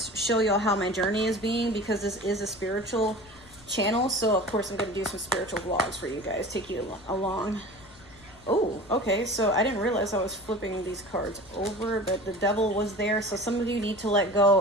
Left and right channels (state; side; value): noise; left; rumble, 24 dB below the sound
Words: show y'all how my journey is being, because this is a spiritual channel. So of course I'm going to do some spiritual vlogs for you guys, take you along. Oh, okay, so I didn't realize I was flipping these cards over, but the devil was there. So some of you need to let